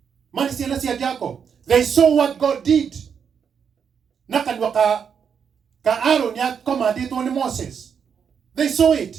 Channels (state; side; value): quieter; left; 7.1 dB